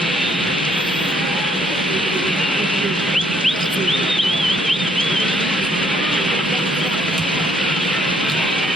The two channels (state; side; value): normal; both; correlation 0.67